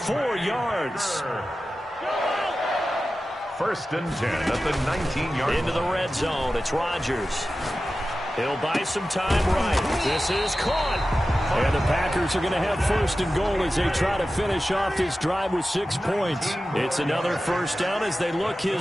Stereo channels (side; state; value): both; normal; correlation 0.94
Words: yards. First and 10 at the 19-yard line. Into the red zone, it's Rodgers. He'll buy some time right. This is caught. And the Packers are going to have first and goal as they try to finish off this drive with 6 points. It's another first down as they look